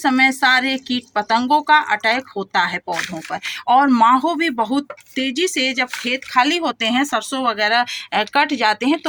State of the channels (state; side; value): identical; both; correlation 1.00